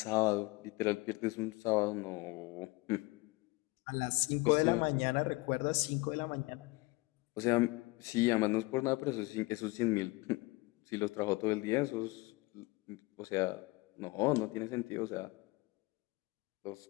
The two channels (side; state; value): right; quieter; 23.5 dB